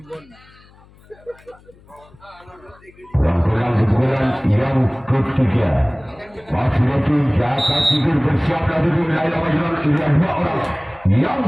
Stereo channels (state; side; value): noise; left; hum, 27 dB below the sound